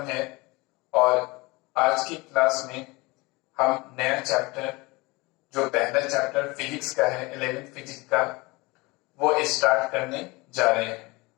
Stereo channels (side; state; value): right; quieter; 24.2 dB